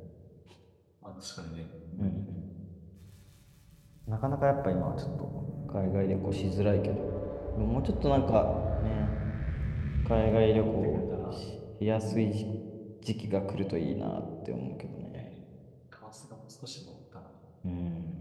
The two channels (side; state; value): both; identical; correlation 1.00